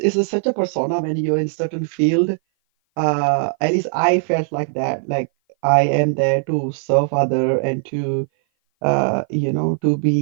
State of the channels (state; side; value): silent; left; 57 dB below the other